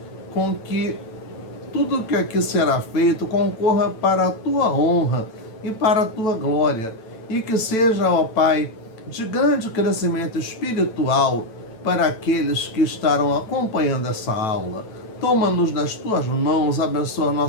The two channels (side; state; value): right; late; 9.1 ms